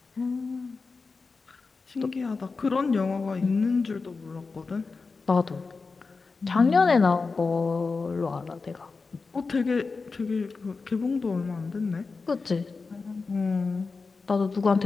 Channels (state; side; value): quieter; right; 4.3 dB